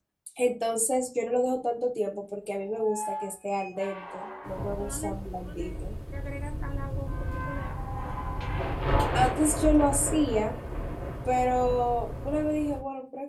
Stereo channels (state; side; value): identical; both; correlation 1.00